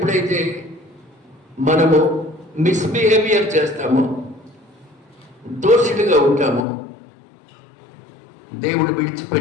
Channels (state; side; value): drops out; right; at 6.6 s